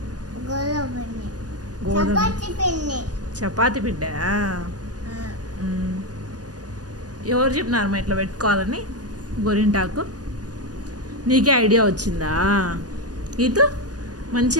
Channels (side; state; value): left; late; 0.68 ms